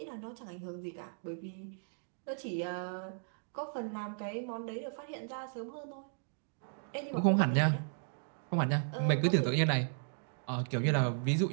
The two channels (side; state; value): left; silent; digital silence